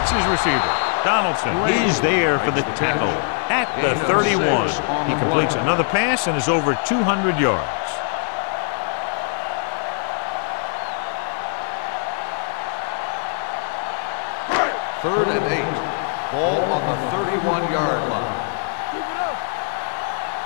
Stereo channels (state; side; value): silent; right; 64 dB below the other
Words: his receiver. Donaldson is there for the tackle at the 31. He completes another pass and is over 200 yards. Third and 8. Ball on the 31-yard line.